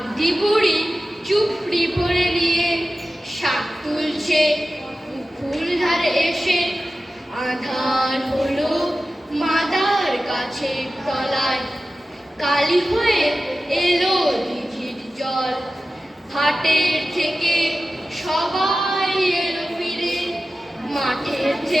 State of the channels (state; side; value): normal; both; correlation 0.94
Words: বুড়ি চুপড়ি পরে নিয়ে শাক তুলছে পুকুর ধারে এসে। আধার হলো মাদার গাছের তলায়, কালি হয়ে এলো দিঘির জল। হাটের থেকে সবাই এলো ফিরে, মাঠের